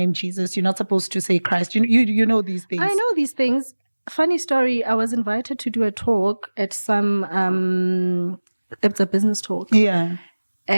Jesus. You're not supposed to say Christ. You know these things. I know these things. Funny story. I was invited to do a talk at some. It's a business talk. Yeah.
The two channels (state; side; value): inverted; both; correlation -1.00